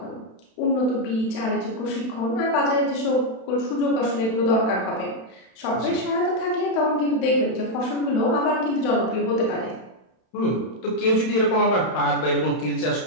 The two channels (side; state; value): right; late; 31 ms